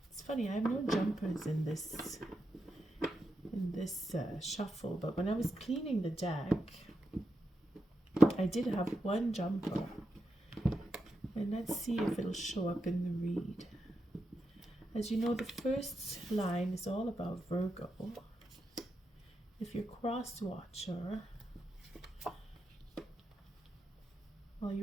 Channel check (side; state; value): both; normal; correlation 0.86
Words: It's funny, I have no jumpers in this shuffle, but when I was cleaning the deck, I did have one jumper, and let's see if it'll show up in the read. As you know, the first line is all about Virgo. If you're cross watcher, well,